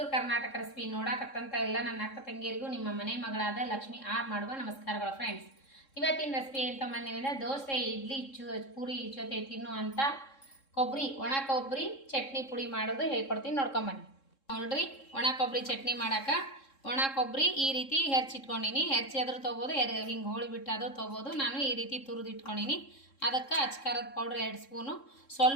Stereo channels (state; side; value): late; right; 3.7 ms